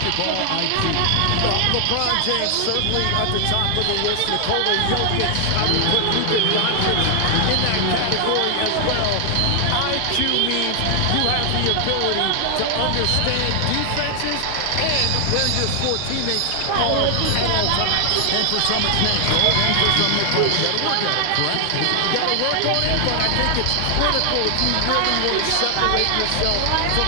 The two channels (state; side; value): different; both; correlation 0.00